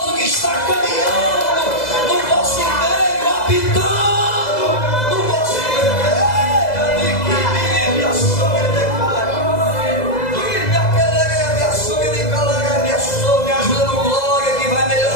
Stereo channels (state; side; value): late; right; 2.0 ms